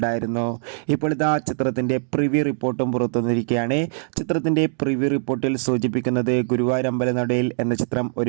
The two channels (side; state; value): left; silent; digital silence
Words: ഇപ്പോൾ ഇതാ ചിത്രത്തിൻ്റെ പ്രിവ്യൂ റിപ്പോർട്ടും പുറത്തുവന്നിരിക്കുകയാണ്. ചിത്രത്തിൻ്റെ പ്രിവ്യൂ റിപ്പോർട്ടിൽ സൂചിപ്പിക്കുന്നത് ഗുരുവായൂരമ്പല നടയിൽ എന്ന ചിത്രം